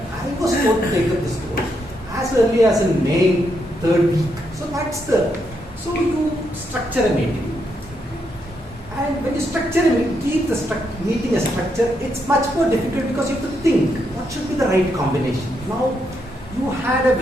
I was told to take up this road as early as in May, 3rd week. So you structure a meeting. And when you structure a meeting, keep the meeting a structure, it's much more difficult because you have to think, what should be the right combination? Now, you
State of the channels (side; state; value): both; normal; correlation 0.79